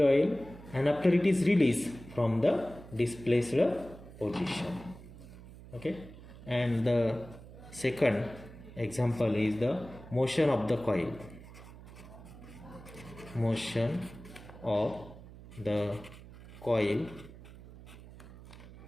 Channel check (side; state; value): right; noise; hum, 17 dB below the sound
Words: oil, and after it is released from the displaced position. Okay, and the second example is the motion of the coil. Motion of the coil